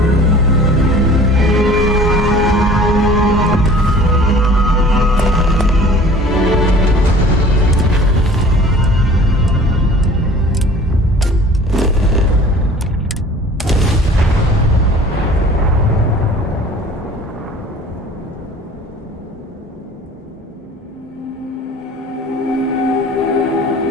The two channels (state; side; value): normal; both; correlation 0.47